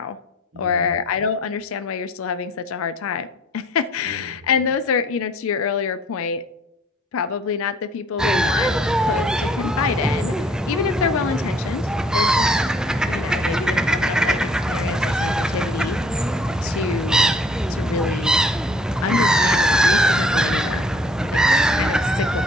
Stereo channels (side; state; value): both; normal; correlation 0.56